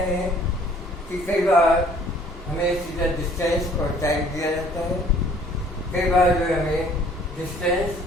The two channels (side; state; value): both; normal; correlation 0.56